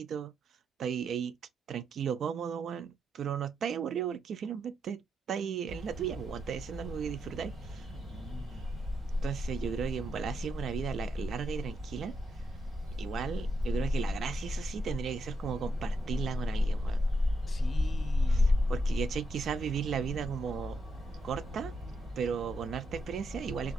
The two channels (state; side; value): normal; both; correlation 0.81